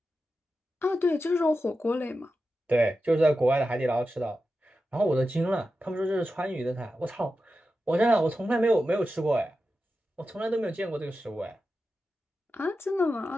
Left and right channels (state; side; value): normal; both; correlation 0.91